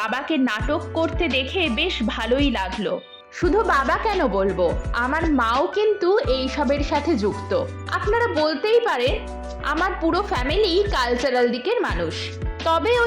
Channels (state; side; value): identical; both; correlation 1.00